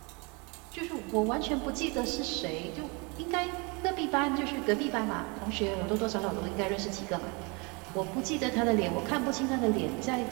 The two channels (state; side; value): quieter; left; 30.2 dB